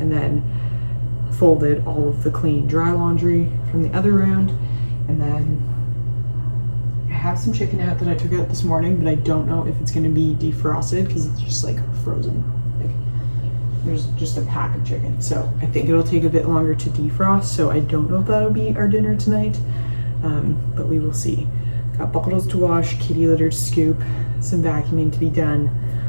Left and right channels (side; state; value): both; inverted; correlation -1.00